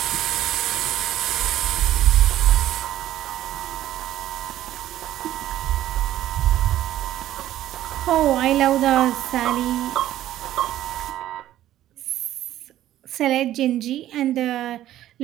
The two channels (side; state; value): left; quieter; 13.2 dB